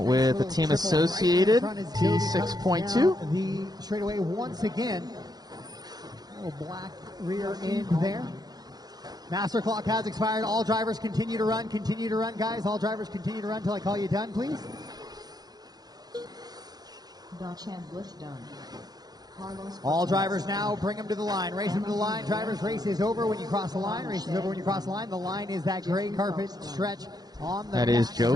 with the team associated T6.2. The straightaway once again. Little black rear end there. Master clock has expired. All drivers continue to run. Continue to run, guys. All drivers continue to run until I call you done, please. Bliss done. Carlos All drivers now bring them to the line. Race them to the line. Drivers, race is over when you cross the line. Race is over when you cross the line. The line is that gray carpet stretch on the that is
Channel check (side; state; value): left; late; 0.19 ms